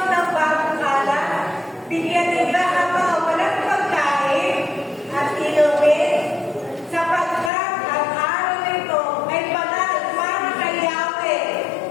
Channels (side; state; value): right; drops out; at 7.5 s